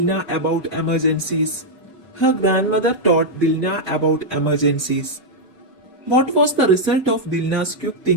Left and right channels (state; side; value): normal; both; correlation -0.03